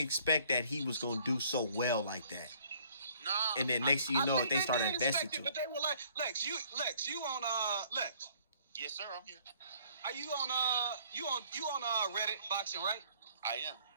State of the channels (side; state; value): both; inverted; correlation -0.59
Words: expect that he was going to do so well like that. Nah, And then next thing you know, they started investing to him. But they were like, Lex, you on Lex? yes, sir. I'm here. Are you on Reddit boxing, right? I am.